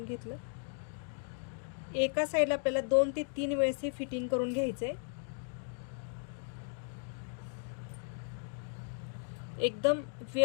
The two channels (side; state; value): right; silent; 54 dB below the other